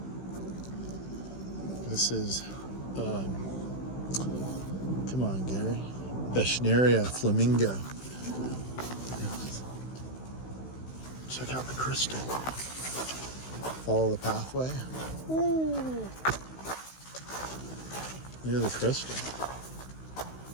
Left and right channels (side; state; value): right; late; 16 ms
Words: Come on, Gary. Beschneria flamingo. Check out the crystal. Follow the pathway. Ooh. Look at the crystal.